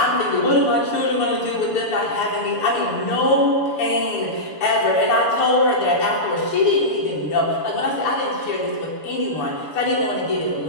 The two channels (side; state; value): right; late; 6.9 ms